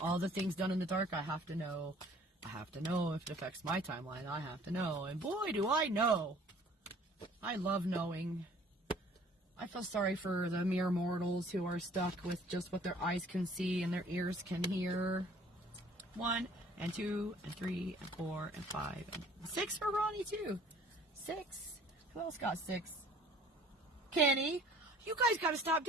all the things done in the dark, I have to know. I have to know if it affects my timeline. I have to know. And boy, do I know. I love knowing. I feel sorry for the mere mortals who are stuck with just what their eyes can see and their ears can hear. 1 and 2 and 3 and 4 and 5 and 6 for Ronnie too. 6. Who else got 6? Kenny. You guys got to stop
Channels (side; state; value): both; normal; correlation 0.53